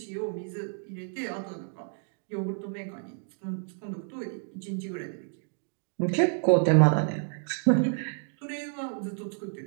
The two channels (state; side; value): silent; left; 58 dB below the other